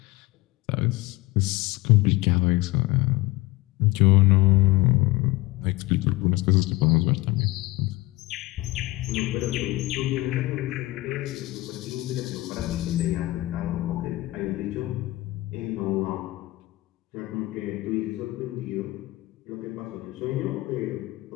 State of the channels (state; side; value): quieter; right; 19.8 dB